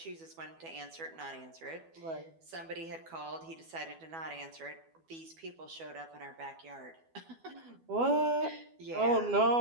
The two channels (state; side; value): late; left; 12 ms